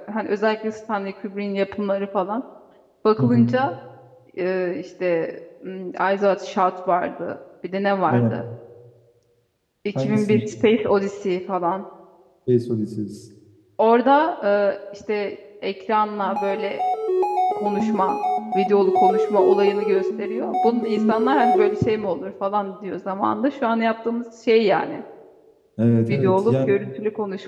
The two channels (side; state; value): both; identical; correlation 1.00